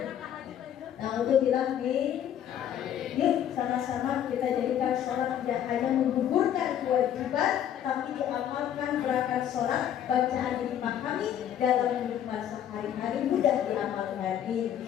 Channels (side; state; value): right; quieter; 10.2 dB